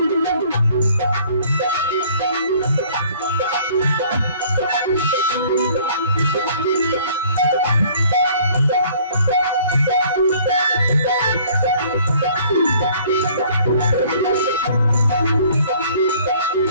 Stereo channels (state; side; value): inverted; both; correlation -0.56